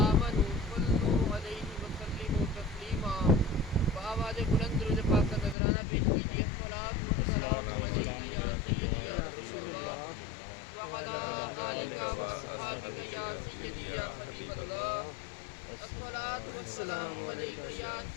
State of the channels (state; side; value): drops out; right; at 5.6 s